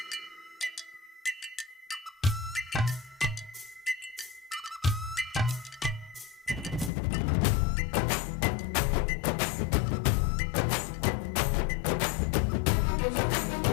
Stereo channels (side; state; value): right; drops out; at 6.9 s